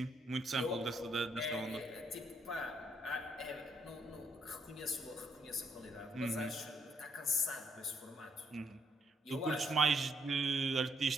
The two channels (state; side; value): normal; both; correlation 0.71